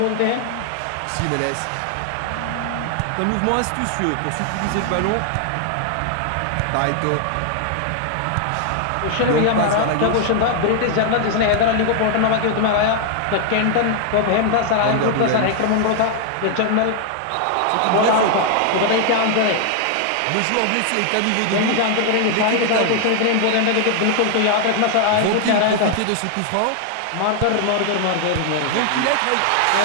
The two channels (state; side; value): different; both; correlation 0.00